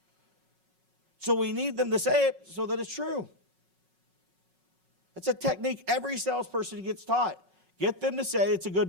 So we need them to say it so that it's true. It's a technique every salesperson gets taught. Get them to say it's a good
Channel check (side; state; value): left; late; 5.4 ms